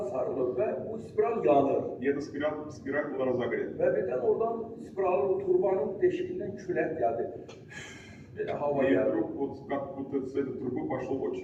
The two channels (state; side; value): identical; both; correlation 1.00